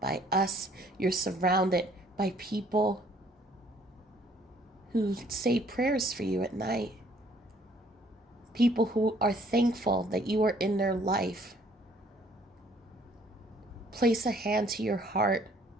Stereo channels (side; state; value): both; normal; correlation 0.61